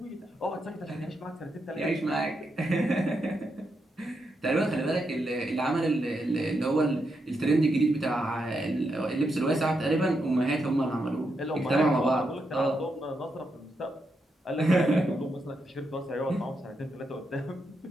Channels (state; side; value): normal; both; correlation 0.83